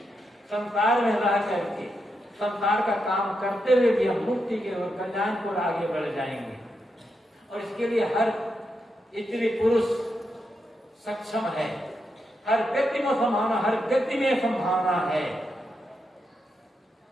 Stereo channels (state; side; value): normal; both; correlation 0.84